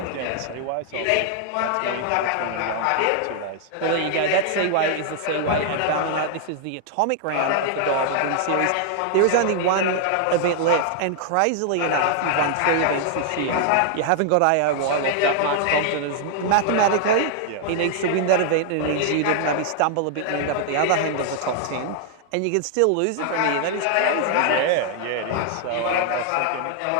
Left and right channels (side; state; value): both; different; correlation 0.00